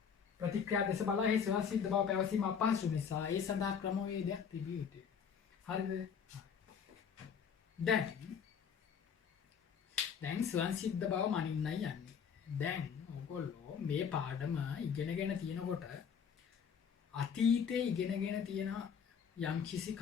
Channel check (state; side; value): quieter; right; 7.1 dB